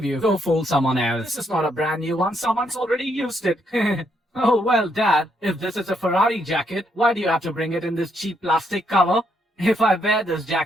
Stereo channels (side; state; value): both; normal; correlation 0.75